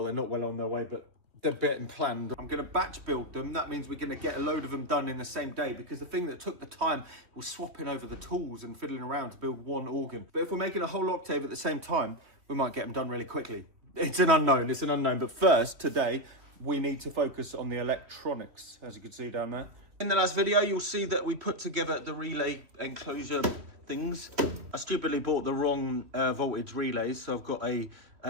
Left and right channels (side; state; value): left; late; 3.1 ms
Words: they're not well on their way, but they're getting planned. I'm going to batch build them. That means we're going to get a load of them done in the same day, because the thing that took the time was swapping over the tools and fiddling around to build one organ. But if we're making a whole octave at the same time, we might get them done really quickly. It's an unknown. But first, today, we need to focus on the electronics, as you can see down there. In the last video, you'll see that we put together the relay enclosure things. I stupidly bought the wrong voltage relays, so I've got a